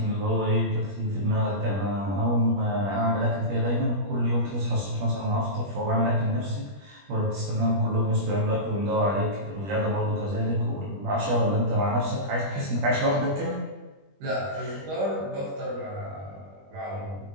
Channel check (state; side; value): late; left; 21 ms